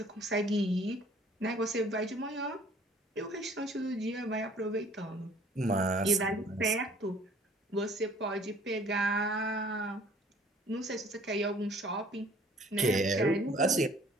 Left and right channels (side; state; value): both; normal; correlation 0.55